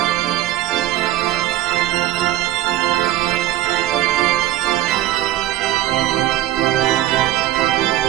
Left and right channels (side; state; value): left; quieter; 14.5 dB